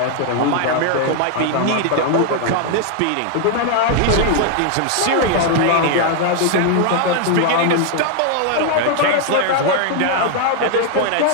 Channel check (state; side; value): different; both; correlation 0.00